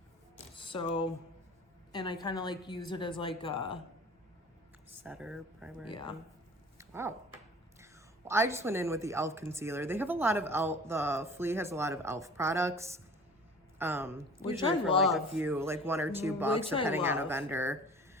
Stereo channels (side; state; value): both; normal; correlation 0.44